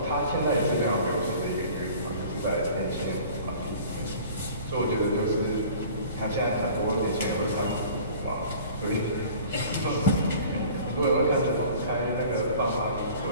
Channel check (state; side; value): inverted; both; correlation -0.46